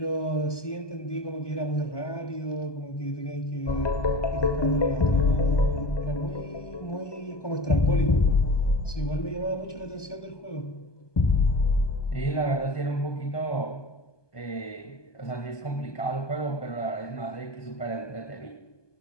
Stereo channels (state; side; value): late; right; 1.2 ms